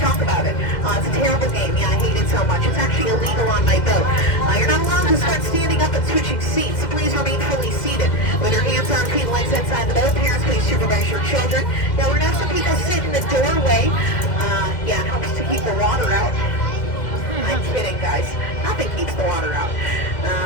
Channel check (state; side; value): late; right; 2.1 ms